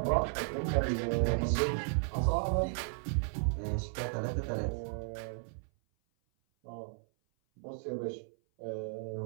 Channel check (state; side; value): silent; left; 55 dB below the other